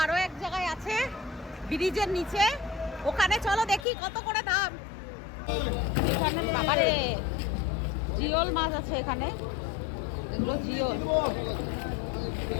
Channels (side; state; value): right; drops out; at 3.9 s